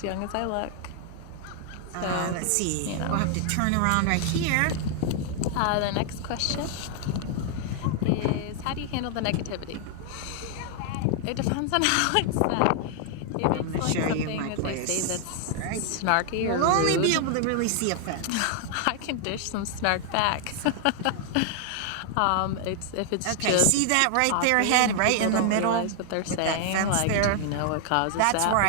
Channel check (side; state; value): both; different; correlation 0.00